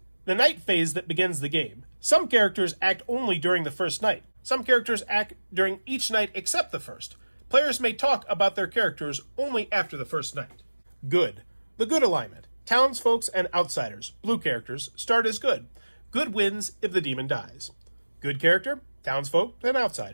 The night phase that begins the game. Some characters act only during the first night. Some characters act during each night except the first. Players may talk about their characters only after the first night. Good. The good alignment. Townsfolk and outsiders, blue characters, start as good. Good wins if the demon dies. Good character, townsfolk, and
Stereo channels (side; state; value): both; inverted; correlation -1.00